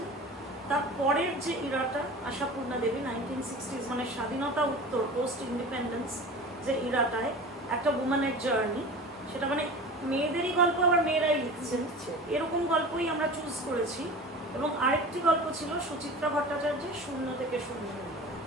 তারপরের যে ইরাটা, আশাপূর্ণা দেবী 1960s, মানে স্বাধীনতা উত্তর, পোস্ট ইন্ডিপেন্ডেন্স যে ইরাটায় একটা উম্যানের জার্নি, সেটা মানে মেয়েদেরই গল্প, আবার মেয়েরাই লিখছেন, এরকম গল্পই আমরা চুজ করেছি। এবং আরেকটি গল্প ছিল সুচিত্রা ভট্টাচার্যের শূন্য থেকে শূন্য,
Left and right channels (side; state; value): both; normal; correlation 0.35